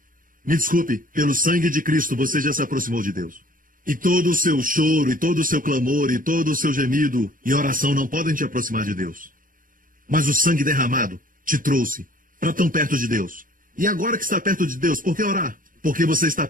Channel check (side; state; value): left; late; 0.40 ms